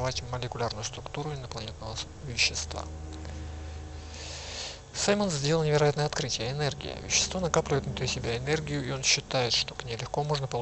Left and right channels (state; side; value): identical; both; correlation 1.00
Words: молекулярную структуру инопланетного вещества. Саймон сделал невероятное открытие – энергия. Вещество накапливает внутри себя энергию, и он считает, что к ней легко можно